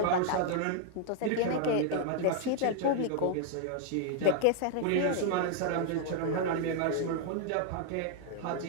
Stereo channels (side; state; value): both; different; correlation 0.00